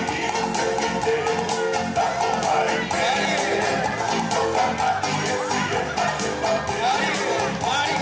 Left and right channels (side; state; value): both; identical; correlation 1.00